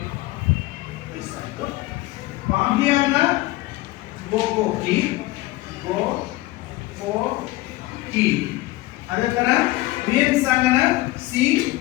ಪಾಹಿಯಾನ ಗೋಕೋಕಿ ಅದೇ ತರ ಯುಯೆನ್ ಸಾಂಗನ ಸಿ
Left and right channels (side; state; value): right; quieter; 18.8 dB